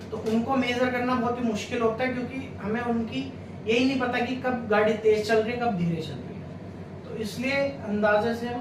तो उनको मेजर करना बहुत ही मुश्किल होता है, क्योंकि हमें उनकी यही नहीं पता कि कब गाड़ी तेज चल रही है, कब धीरे चल रही है। तो इसलिए अंदाजे से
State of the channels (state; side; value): identical; both; correlation 1.00